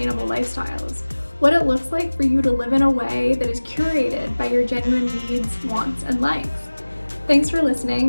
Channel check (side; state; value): both; inverted; correlation -1.00